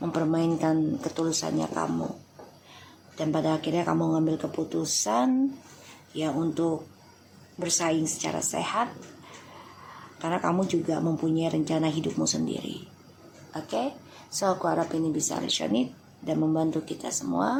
ketulusannya kamu. Dan pada akhirnya kamu ngambil keputusan ya untuk bersaing secara sehat Karena kamu juga mempunyai rencana hidupmu sendiri. Oke? So aku harap ini bisa resonate dan membantu kita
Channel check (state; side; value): identical; both; correlation 1.00